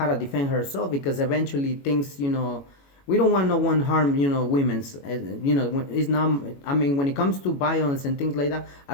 to defend herself, because eventually things, we don't want no one harm, women's, it's not. I mean, when it comes to violence and things like that,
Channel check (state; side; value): late; right; 21 ms